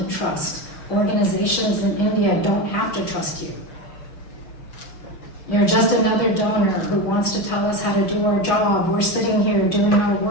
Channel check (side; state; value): right; late; 6.3 ms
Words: trust. Organizations in India don't have to trust you. You're just another donor who wants to tell us how to do our job. We're sitting here doing our